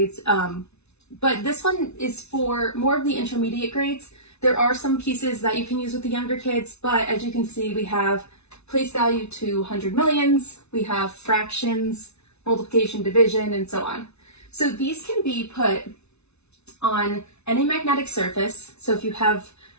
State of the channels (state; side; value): late; right; 0.81 ms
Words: but this one is for more of the intermediate grades. There are some pieces that you can use with the younger kids, but as you can see, we have place value to 100 millions, we have fractions, multiplication, division, and so on. So these can be put on any magnetic surface. So if you have